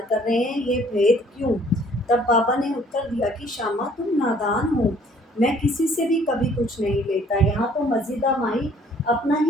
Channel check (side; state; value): both; normal; correlation 0.58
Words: कर रहे हैं। ये भेद क्यों? तब बाबा ने उत्तर दिया कि श्यामा, तुम नादान हो। मैं किसी से भी कभी कुछ नहीं लेता। यहाँ तो मस्जिदा माई अपना